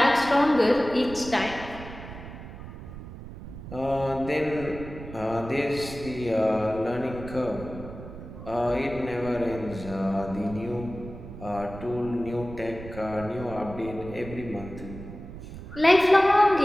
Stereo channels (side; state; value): right; noise; rumble, 12 dB below the sound